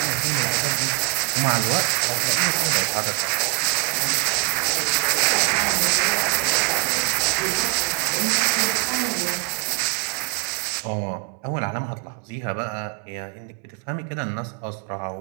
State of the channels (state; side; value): quieter; left; 33.1 dB